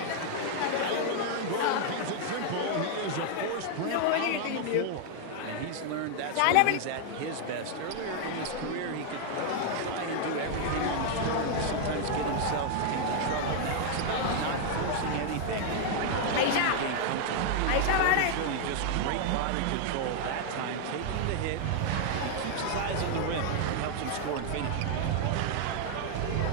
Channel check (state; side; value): different; both; correlation 0.00